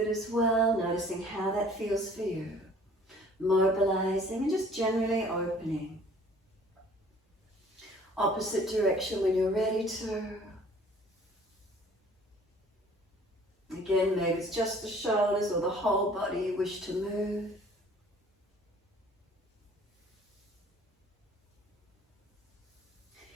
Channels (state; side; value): normal; both; correlation 0.53